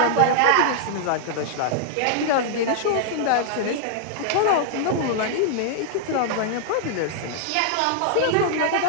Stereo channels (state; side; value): different; both; correlation -0.01